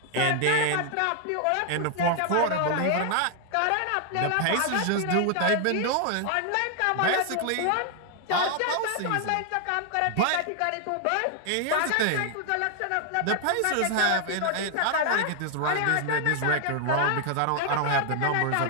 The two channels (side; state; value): both; different; correlation 0.00